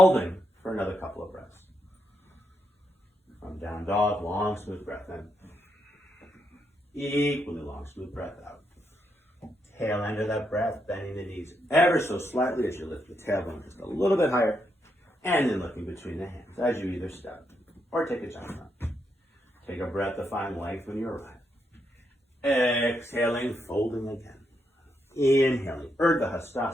for another couple of breaths. From down dog, long, smooth breath in. Equally long, smooth breath out. Tail end of that breath, bending the knees ever so slightly as you lift the tailbone just a little bit higher. And then looking between the hands as you either step or take a jump up. Take a breath to find length when you arrive. Exhaling, folding again. Inhaling, Urdhva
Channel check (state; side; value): normal; both; correlation 0.80